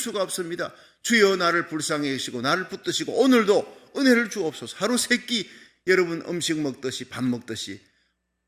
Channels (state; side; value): identical; both; correlation 1.00